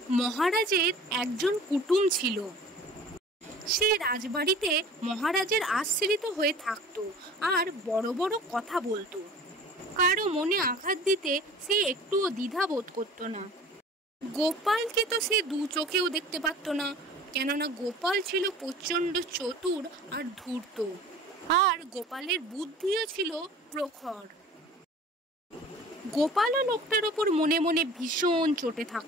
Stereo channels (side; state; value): both; normal; correlation 0.44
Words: মহারাজের একজন কুটুম ছিল। সে রাজবাড়িতে মহারাজের আশ্রিত হয়ে থাকতো আর বড় বড় কথা বলতো। কারো মনে আঘাত দিতে সে একটুও দ্বিধা বোধ করতো না। গোপালকে তো সে দু চোখেও দেখতে পারতো না, কেননা গোপাল ছিল প্রচণ্ড চতুর আর ধূর্ত, আর গোপালের বুদ্ধিও ছিল প্রখর। গোপালও লোকটার ওপর মনে মনে ভীষণ চটে